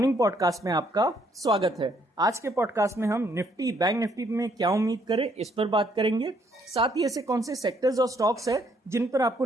पॉडकास्ट में आपका स्वागत है। आज के पॉडकास्ट में हम निफ्टी बैंक निफ्टी में क्या उम्मीद करें इस पर बात करेंगे। साथ ही ऐसे कौन से सेक्टर्स और स्टॉक्स है जिन पर आपको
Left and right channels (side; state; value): both; normal; correlation 0.69